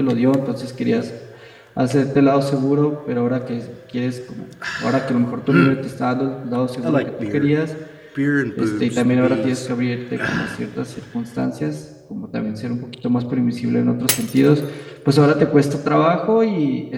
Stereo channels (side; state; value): both; identical; correlation 1.00